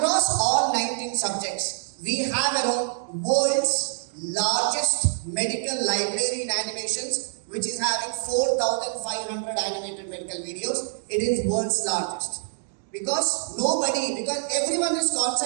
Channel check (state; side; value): silent; left; digital silence